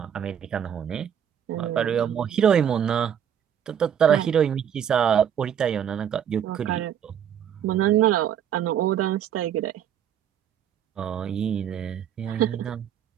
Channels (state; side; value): quieter; left; 9.1 dB